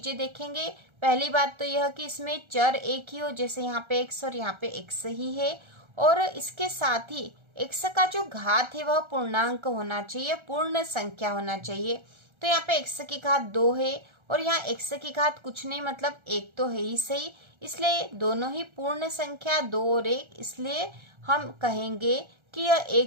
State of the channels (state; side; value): late; left; 1.3 ms